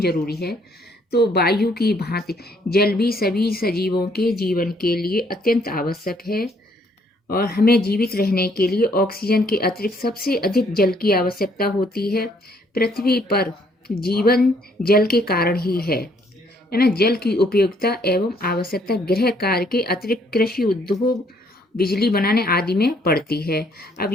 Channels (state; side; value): normal; both; correlation 0.66